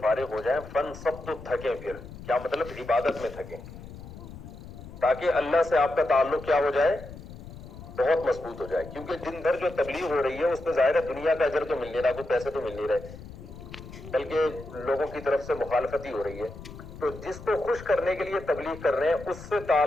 فارغ ہو جائیں, فَانْصَبْ, تو تھکیں. پھر کیا مطلب؟ عبادت میں تھکیں, تاکہ اللہ سے آپ کا تعلق کیا ہو جائے؟ بہت مضبوط ہو جائے. کیونکہ دن بھر جو تبلیغ ہو رہی ہے اس میں ظاہر ہے دنیا کا اجر تو مل نہیں رہا, کوئی پیسے تو مل نہیں رہے, بلکہ لوگوں کی طرف سے مخالفت ہی ہو رہی ہے. تو جس کو خوش کرنے کے لیے تبلیغ کر رہے ہیں, اس سے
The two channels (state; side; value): noise; left; rumble, 14 dB below the sound